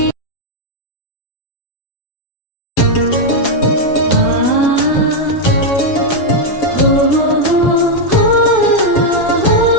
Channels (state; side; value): late; right; 7.2 ms